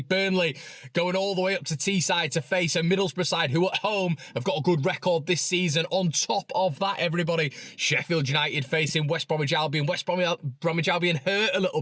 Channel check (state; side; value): identical; both; correlation 1.00